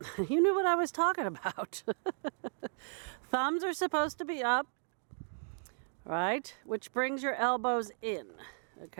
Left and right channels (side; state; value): left; silent; digital silence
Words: You knew what I was talking about. Thumbs are supposed to be up, right? Which brings your elbows in,